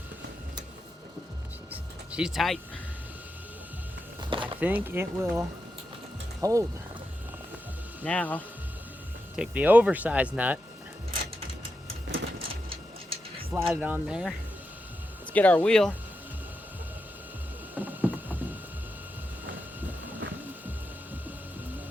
She's tight. I think it will hold. Now, take the oversized nut, slide it on there. Let's get our wheel.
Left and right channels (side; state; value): both; normal; correlation 0.87